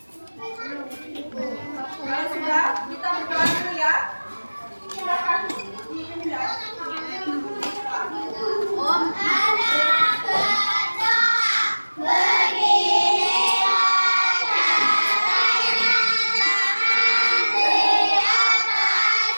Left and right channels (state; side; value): inverted; both; correlation -1.00